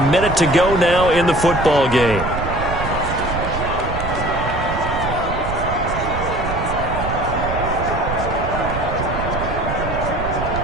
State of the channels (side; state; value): right; noise; rumble, 6 dB below the sound